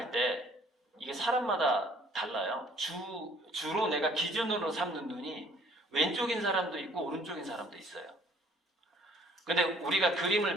때 이게 사람마다 달라요. 주로 내가 기준으로 삼는 눈이 왼쪽인 사람도 있고 오른쪽인 사람도 있어요. 근데 우리가 그림을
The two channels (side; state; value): both; normal; correlation 0.58